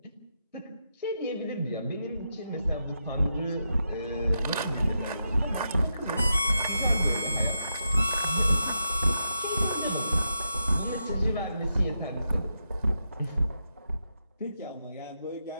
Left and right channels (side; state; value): both; inverted; correlation -0.85